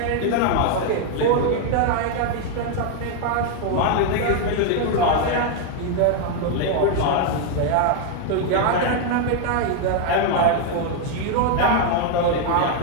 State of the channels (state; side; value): different; both; correlation 0.00